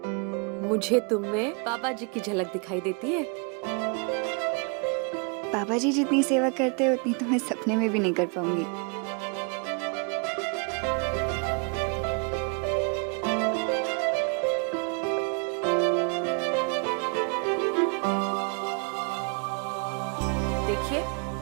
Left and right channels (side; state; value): left; quieter; 36.0 dB